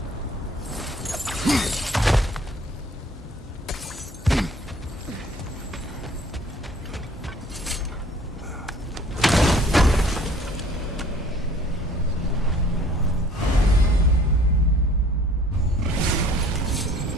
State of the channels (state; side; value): normal; both; correlation 0.54